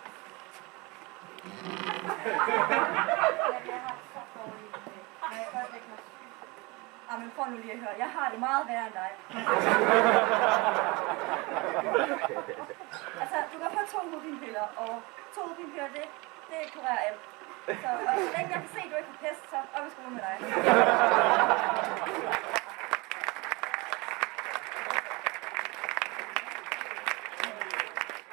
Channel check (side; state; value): left; quieter; 25.7 dB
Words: Men prøv nu lige at høre, jeg har det meget værre end dig. Altså, du kan få 2 hovedpinepiller, og 2 hovedpinepiller, det kurerer alt. Så længe jeg kan se, at du ikke har pest, så op i skole med dig.